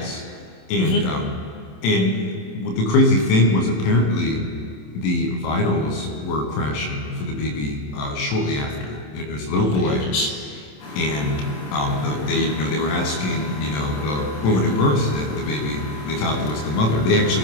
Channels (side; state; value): right; late; 27 ms